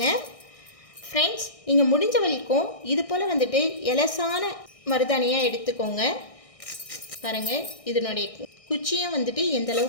ஃப்ரெண்ட்ஸ். நீங்கள் முடிஞ்ச வரைக்கும் இது போல் வந்துட்டு எலசான மருதாணியாக எடுத்துக்கோங்க. பாருங்கள், இதனுடைய குச்சியும் வந்துட்டு எந்த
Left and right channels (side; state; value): right; late; 1.6 ms